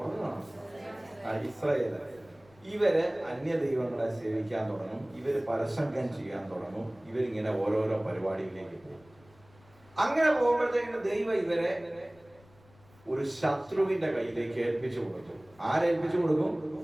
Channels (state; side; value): noise; left; rumble, 27 dB below the sound